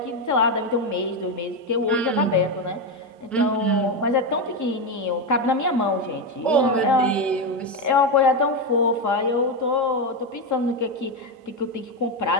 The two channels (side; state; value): both; normal; correlation 0.10